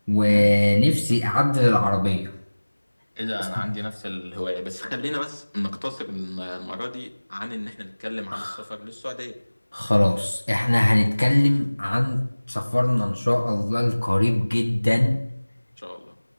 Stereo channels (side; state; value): both; inverted; correlation -1.00